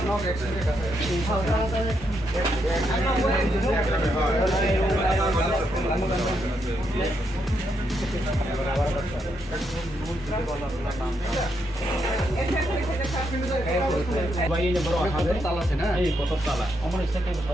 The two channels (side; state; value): both; normal; correlation 0.79